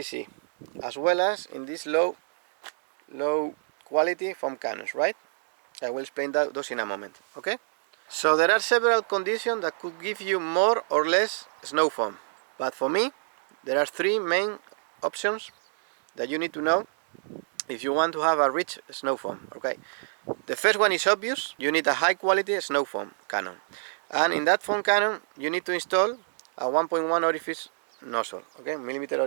as well as in these low quality foam cannons, right? I will explain those in a moment. Okay, so there are several conditions that could give you more or less snow foam, but for me there are 3 main options that you need to know if you want to have a rich snow foam. Okay, the first one is obvious. You need a high quality snow foam cannon, and in that foam cannon you need to install a 1.1 orifice nozzle, okay, millimeter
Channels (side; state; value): left; silent; digital silence